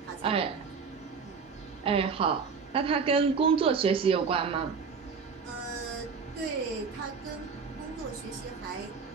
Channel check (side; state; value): left; quieter; 5.5 dB